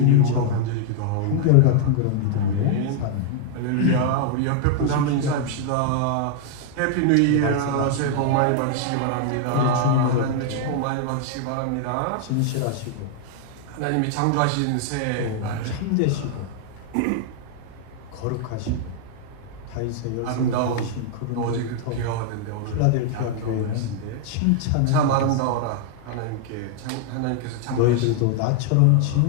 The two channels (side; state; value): both; different; correlation 0.00